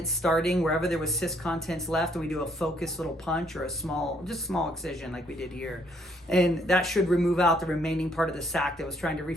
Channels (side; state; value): both; normal; correlation 0.67